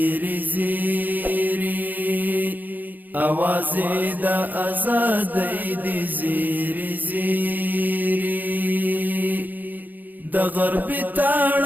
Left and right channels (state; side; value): late; left; 0.085 ms